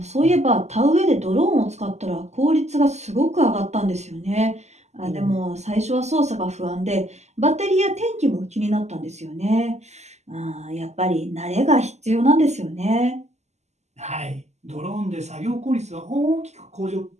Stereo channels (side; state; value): left; late; 0.33 ms